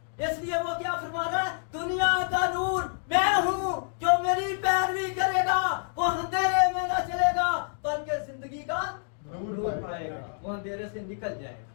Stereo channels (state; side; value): silent; right; digital silence